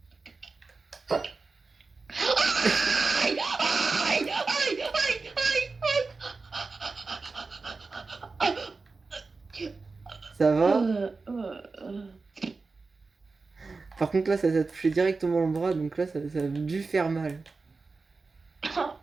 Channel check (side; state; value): left; quieter; 4.0 dB